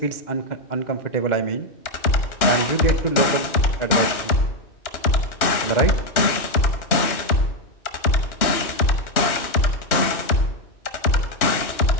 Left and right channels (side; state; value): right; late; 2.9 ms